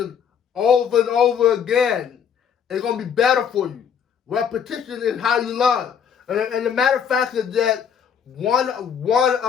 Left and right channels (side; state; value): right; quieter; 7.6 dB